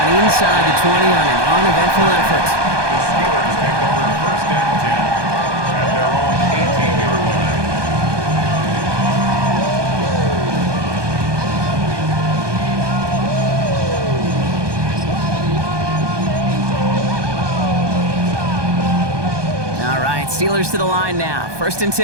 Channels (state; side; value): late; left; 1.2 ms